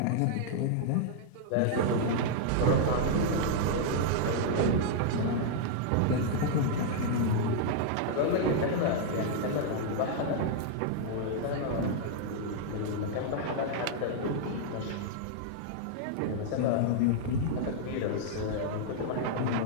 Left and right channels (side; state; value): both; different; correlation -0.01